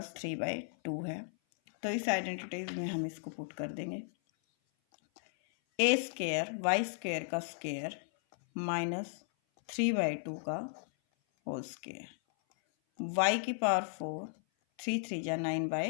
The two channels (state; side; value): silent; right; 54 dB below the other